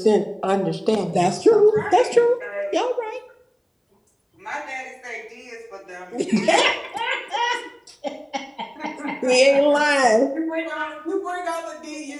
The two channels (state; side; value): identical; both; correlation 1.00